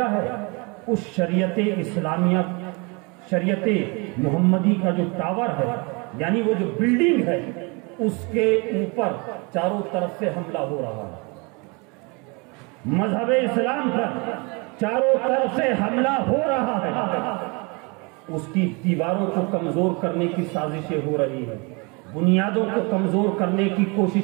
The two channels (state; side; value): quieter; left; 30.0 dB